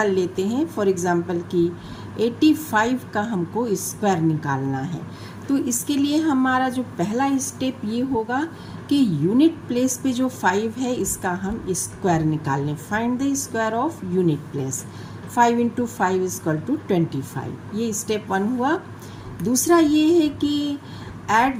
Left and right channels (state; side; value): identical; both; correlation 1.00